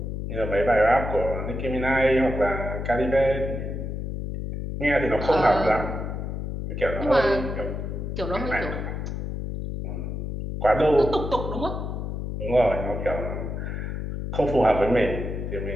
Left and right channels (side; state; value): left; noise; hum, 5 dB below the sound